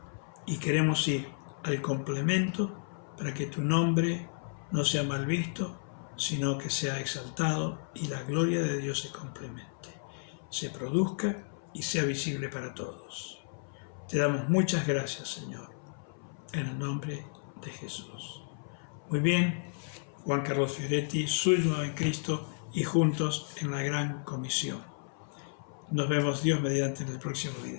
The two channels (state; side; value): silent; right; 56 dB below the other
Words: Y queremos ir al complemento para que tu nombre no sea mal visto, sino que sea exaltado y la gloria de Dios se complemente, se produzca y sea visible para todos. Te damos muchas gracias, Señor, en el nombre de Jesús. Muy bien, Juan Carlos Fioretti, suyo en Cristo y juntos en la gran comisión. Nos vemos Dios mediante en el próximo